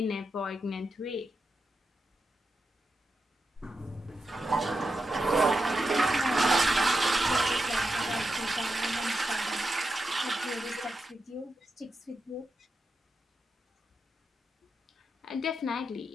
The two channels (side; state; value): both; normal; correlation 0.87